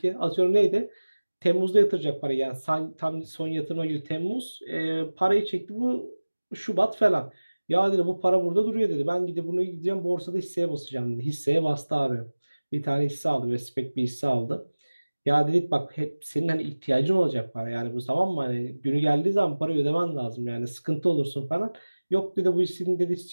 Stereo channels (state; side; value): inverted; both; correlation -1.00